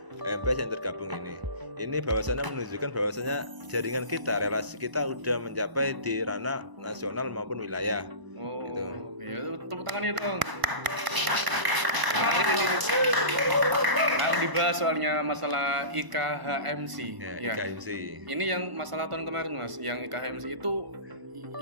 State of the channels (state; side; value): late; left; 1.0 ms